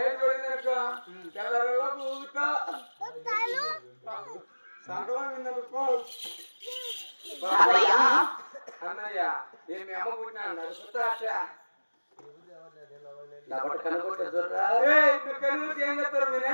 ఏ చూడిందనుకో తెల్లలో ఊగుతా సంకలం విందనుకో అన్నయ్య నేను మీ అమ్మ పుట్టినా నడుపుతా ఏం చేస్తారు మీ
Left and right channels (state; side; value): inverted; both; correlation -1.00